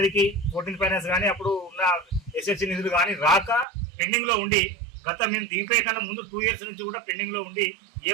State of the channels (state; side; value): drops out; left; at 3.7 s